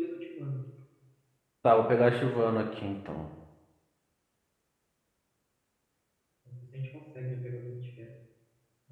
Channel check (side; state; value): both; identical; correlation 1.00